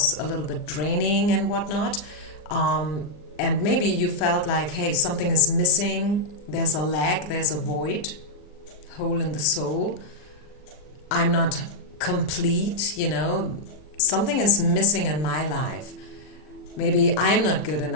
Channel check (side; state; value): right; late; 39 ms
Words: a little bit draining and whatnot. And maybe you felt like, hey, something is missing. There's a lack, there's a void, hole in the soul. I'm not complete, something is missing in my life. Maybe I'm not good